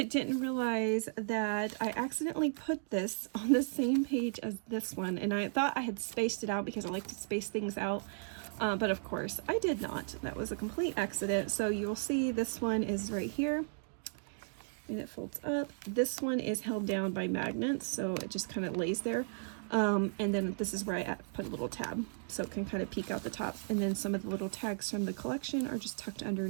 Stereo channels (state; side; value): silent; left; digital silence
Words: didn't realize that I accidentally put this on the same page as this one. And I thought I had spaced it out because I like to space things out. But of course I did not. That was a complete accident. So you'll see this one is right here and it folds up. This one is held down by magnets, so it just kind of lays there. And then this is where I put a little tab so it can kind of peek out the top. And then some of the little tags from the collection are just tucked